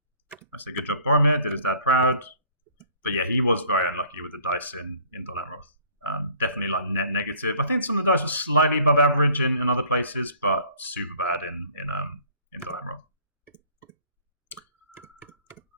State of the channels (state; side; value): inverted; both; correlation -0.54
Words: I say good job, Boromir. Did his dad proud. But yeah, he was very unlucky with the dice in Dol Amroth. Definitely like net negative. I think some of the dice were slightly above average in other places, but super bad in Dol Amroth.